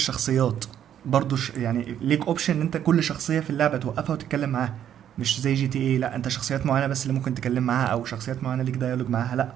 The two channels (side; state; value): left; quieter; 10.1 dB